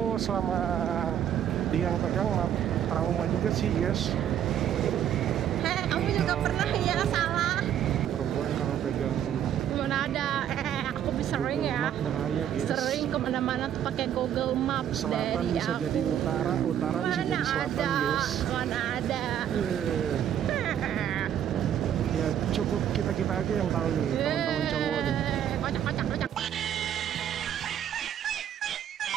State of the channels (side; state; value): left; quieter; 10.1 dB